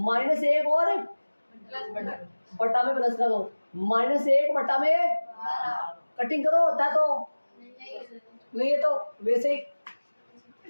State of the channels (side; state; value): both; inverted; correlation -1.00